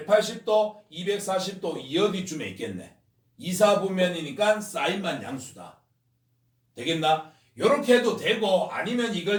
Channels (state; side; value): identical; both; correlation 1.00